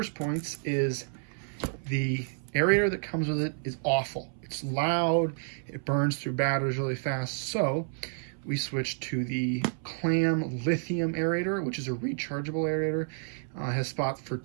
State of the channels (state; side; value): silent; left; 58 dB below the other